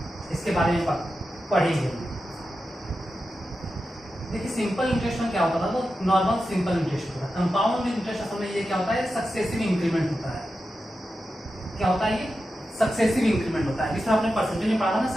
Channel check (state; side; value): normal; both; correlation 0.91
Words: इसके बारे में पढ़ेंगे। देखिए सिंपल इंटरेस्ट में क्या होता था, तो नॉर्मल सिंपल इंटरेस्ट होता है। कंपाउंड इंटरेस्ट असल में ये क्या होता है, सक्सेसिव इंक्रीमेंट होता है। क्या होता है ये, सक्सेसिव इंक्रीमेंट होता है, जिसमें आपने परसेंटेज में पढ़ा था ना,